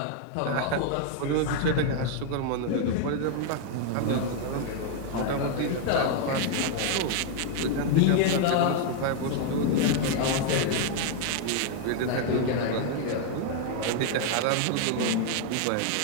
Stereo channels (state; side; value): different; both; correlation 0.00